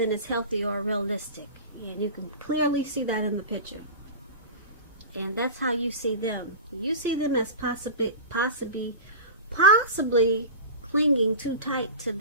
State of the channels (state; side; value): inverted; both; correlation -0.31